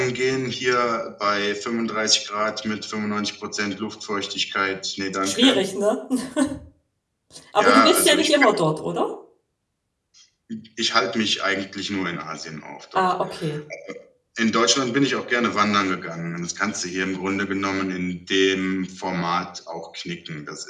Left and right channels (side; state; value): both; identical; correlation 1.00